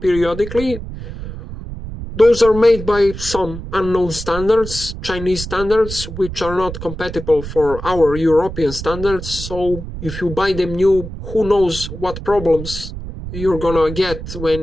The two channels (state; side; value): noise; right; rumble, 9 dB below the sound